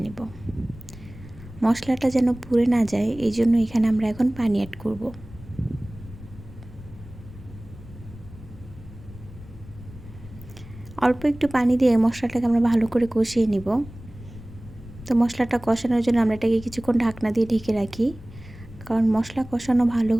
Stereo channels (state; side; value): noise; left; rumble, 17 dB below the sound